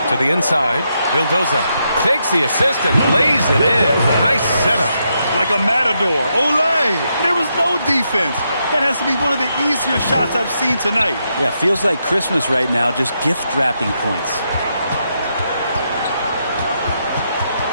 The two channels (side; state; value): both; inverted; correlation -0.81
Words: To the inside, Vildoza takes the assist and lays it in. Nice setup. Like a matador. Olay! There was no defense. That has to be one of the easier shots I've seen tonight. Yeah, feels like Christmas right now, just gift wrapping points.